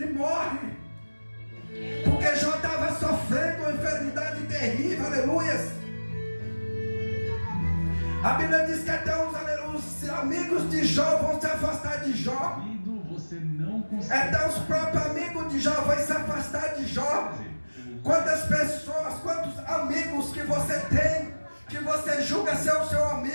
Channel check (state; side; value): inverted; both; correlation -1.00